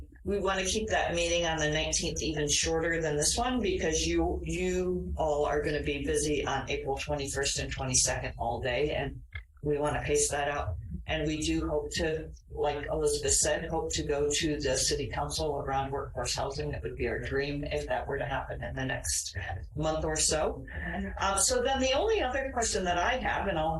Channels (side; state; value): both; identical; correlation 1.00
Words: we want to keep that meeting on the 19th even shorter than this one because you all are going to be busy on April 21st and 22nd all day, and we want to pace that out. And we do hope to, like Elizabeth said, hope to go to the city council around workforce housing. That would be our dream if that were to happen in the next month or so. So then the only other question that I have, and